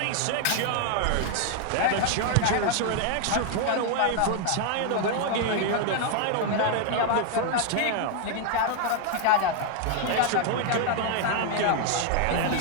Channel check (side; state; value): both; different; correlation 0.00